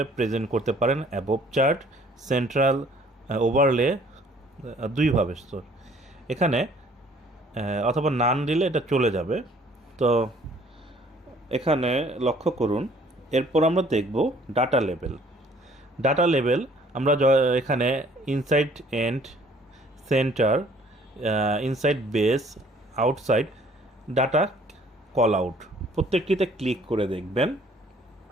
প্রেজেন্ট করতে পারেন: অ্যাবভ চার্ট, সেন্ট্রাল, ওভারলে, দুইভাবে। এখানে অথবা নান দিলে এটা চলে যাবে। তো এখানে লক্ষ্য করুন। এরপর আমরা দেখব ডাটা লেভেল। আমরা এখানে inside end, center, inside base, outside data callout, প্রত্যেকটিতে ক্লিক করে দেখবেন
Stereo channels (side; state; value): both; normal; correlation 0.58